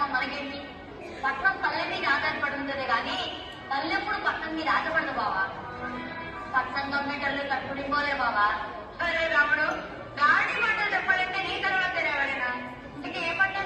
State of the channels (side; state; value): both; identical; correlation 1.00